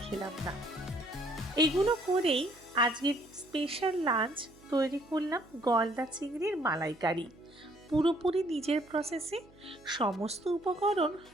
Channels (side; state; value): right; noise; hum, 26 dB below the sound